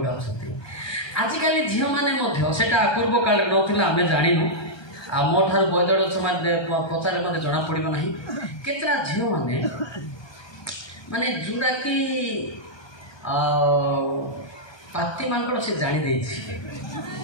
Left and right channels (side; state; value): right; late; 1.2 ms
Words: अच्छा आजिकल झील मैंने सेटा पूर्व काल ना आम जानू आ मो ठार बदड़ पचारे मत जना पड़ो ना केतरा झील मैंने माने जोड़ा कि पाती मांकड़ से जानी